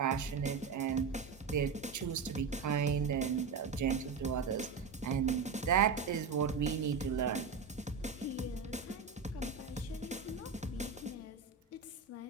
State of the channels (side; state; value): left; quieter; 5.5 dB